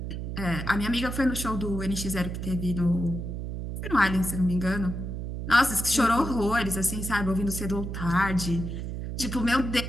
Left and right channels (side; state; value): right; noise; hum, 5 dB below the sound